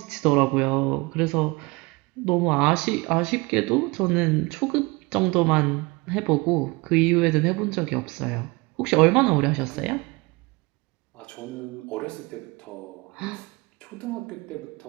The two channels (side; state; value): left; quieter; 25.0 dB